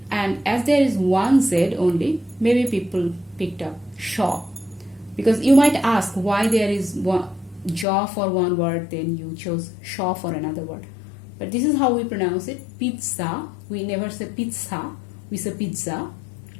and as there is one Z only, maybe people picked up shaw. Because you might ask why there is one jaw for one word, then you chose shaw for another word. But this is how we pronounce it, pizza. We never say pizza, we say pizza.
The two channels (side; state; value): right; drops out; at 7.9 s